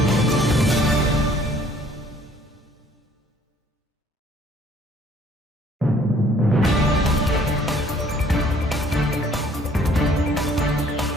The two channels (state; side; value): normal; both; correlation 0.59